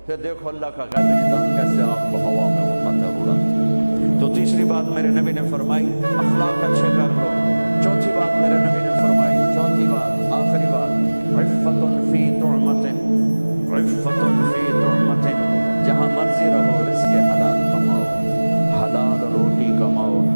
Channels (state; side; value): inverted; both; correlation -1.00